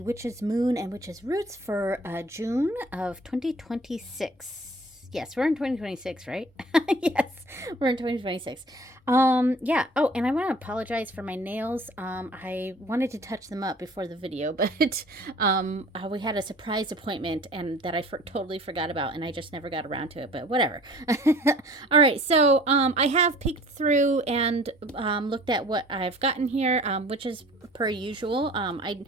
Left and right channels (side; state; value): both; normal; correlation 0.49